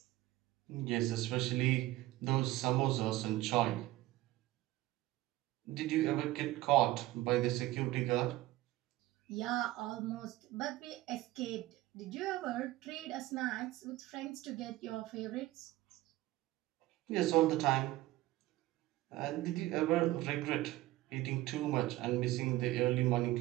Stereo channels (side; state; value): left; quieter; 16.9 dB